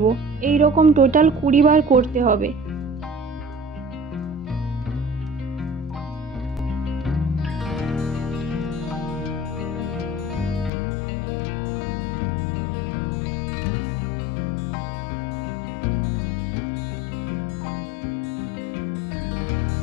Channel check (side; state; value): right; drops out; at 10.7 s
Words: এই রকম টোটাল 20 বার করতে হবে।